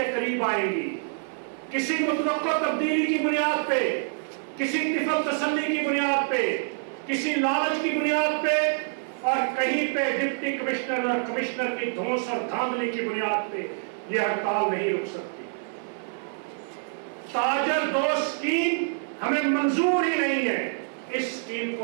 قریب آئیں گی. کسی متوقع تبدیلی کی بنیاد پہ، کسی طفل تسلی کی بنیاد پہ، کسی لالچ کی بنیاد پہ، اور کہیں پہ ڈپٹی کمشنر اور کمشنر کی دھونس اور دھاندلی کی بنیاد پہ یہ ہڑتال نہیں رک سکتی. تاجر دوست اسکیم ہمیں منظور ہی نہیں ہے. اس اسکیم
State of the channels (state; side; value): silent; left; 61 dB below the other